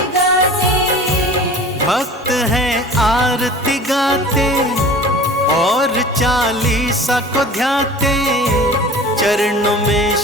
गाते। भक्त हैं आरती गाते और 40 को ध्याते। चरणों में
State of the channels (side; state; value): both; normal; correlation 0.41